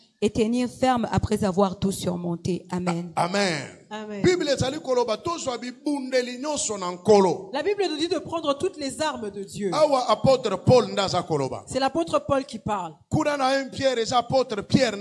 et tenir ferme après avoir tout surmonté. Amen. Amen. Amen. La Bible nous dit de prendre toutes les armes de Dieu. C'est l'apôtre Paul qui parle. Dans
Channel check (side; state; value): both; identical; correlation 1.00